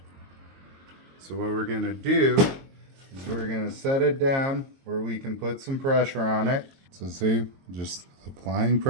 So what we're going to do is we're going to set it down where we can put some pressure on it. So see, just applying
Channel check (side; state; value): left; late; 22 ms